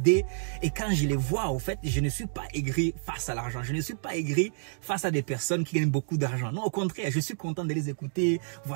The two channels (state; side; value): silent; left; digital silence